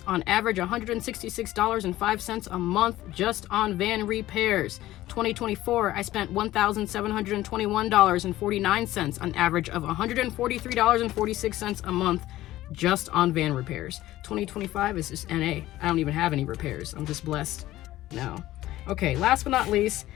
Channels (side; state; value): right; quieter; 15.5 dB